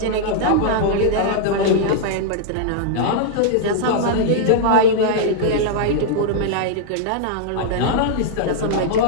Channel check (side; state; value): both; different; correlation -0.02